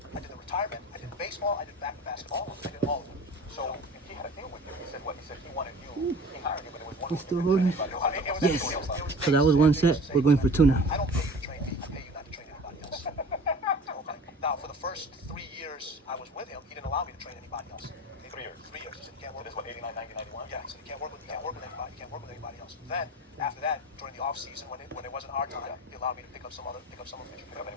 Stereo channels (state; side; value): normal; both; correlation 0.40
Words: I did the retirement. I did baseball. I did basketball. I did all of them. So he had a deal with you. He said what? He said he wanted you. He hired you, but it was one. We're still rolling. Yes. Yes. So that was one set. We're going for two now. I don't pay you to train me. I pay you not to train anybody else. Okay. Now, for the first 3 years I was with him, he didn't allow me to train anybody else. 3 years. 3 years. He said you can't work. This was 89, 90, 91. Yeah. He said you can't work with anybody. You can't work with anybody else. Then after that, during the off season when it wasn't our time, he allowed me to pick up some officials. Pick up